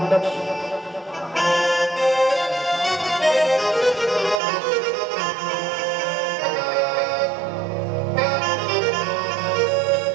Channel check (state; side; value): drops out; left; at 4.4 s